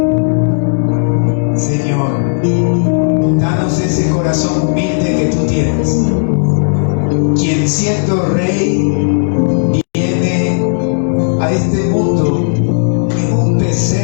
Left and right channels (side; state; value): right; silent; digital silence